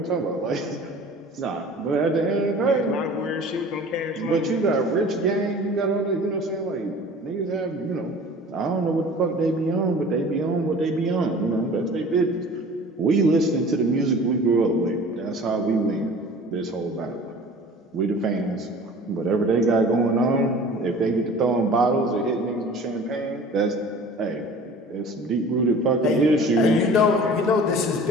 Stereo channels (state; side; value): normal; both; correlation 0.44